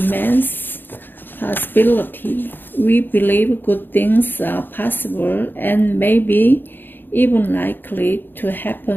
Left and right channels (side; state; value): right; late; 0.095 ms